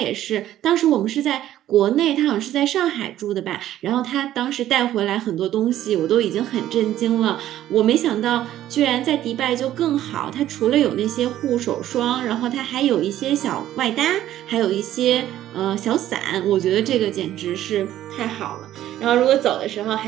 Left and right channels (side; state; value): left; quieter; 12.8 dB